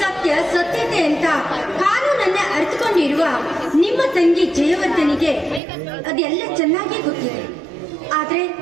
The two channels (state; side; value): drops out; left; at 5.6 s